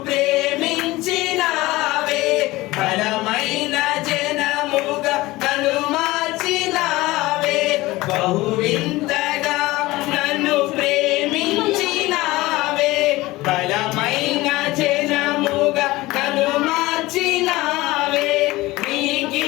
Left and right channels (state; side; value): quieter; right; 19.4 dB